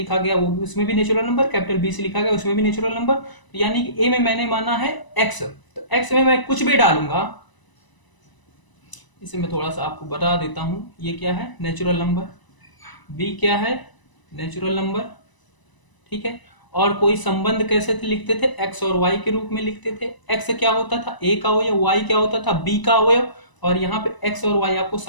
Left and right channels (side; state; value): right; late; 1.0 ms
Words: गया वो भी, उसमें भी नेचुरल नंबर, कैपिटल बी से लिखा गया उसमें भी नेचुरल नंबर। तो यानी कि ए में मैंने माना है एक्स, तो एक्स में मैं कुछ भी डालूंगा। इसे मैं थोड़ा सा आपको बता देता हूं, ये क्या है, नेचुरल नंबर, बी क्या है, नेचुरल नंबर। ठीक है, और कोई संबंध कैसे थे लिखते थे, एक्स और वाई के रूप में लिखते थे। एक्स क्या होता था, ए का अवयव, वाई क्या होता था, बी का अवयव। और यहाँ पे एक्स और वाई आपको